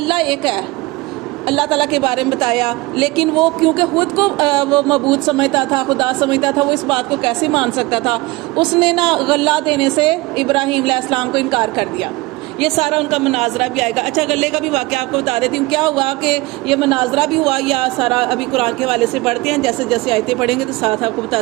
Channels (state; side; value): quieter; left; 21.9 dB